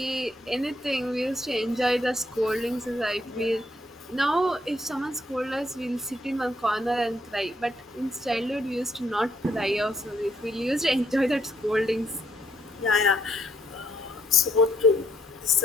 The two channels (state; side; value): normal; both; correlation 0.72